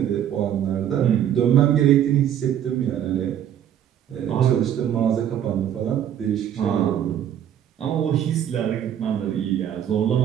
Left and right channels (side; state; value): left; quieter; 10.0 dB